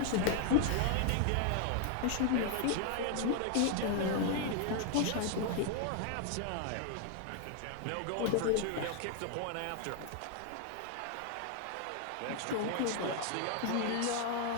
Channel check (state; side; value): different; both; correlation 0.00